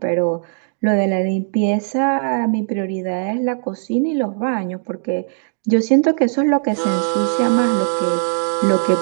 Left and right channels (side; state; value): left; silent; digital silence